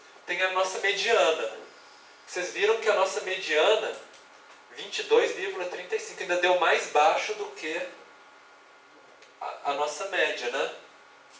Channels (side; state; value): both; identical; correlation 1.00